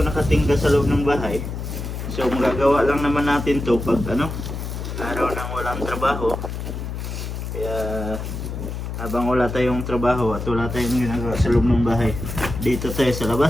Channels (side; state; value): left; noise; hum, 6 dB below the sound